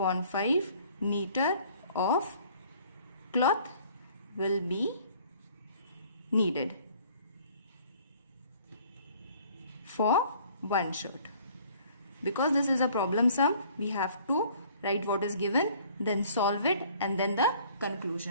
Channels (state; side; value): inverted; both; correlation -0.55